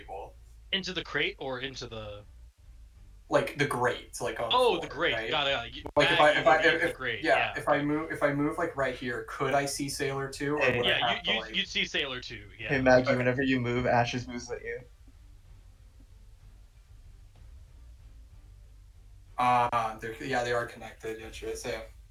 Into the crate or into the? Like the grate, like on the Oh, the floor, grate. right? Got it. Like Maggie would be in the grate. yeah, Yeah. Okay. if I move like right here, could I see Sailor 2, or Hey. would Yeah, I have to like? you'd see Sailor 2. Yeah. Hey Maggie, Okay. whenever you move, Ashes moves at you. They are connected. Yeah, true. So,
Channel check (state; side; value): identical; both; correlation 1.00